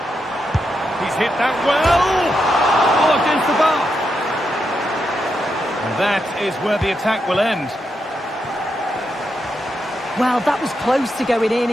hit that well. Oh, against the bar. And that is where the attack will end. Well, that was close to going in,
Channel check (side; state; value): both; normal; correlation 0.84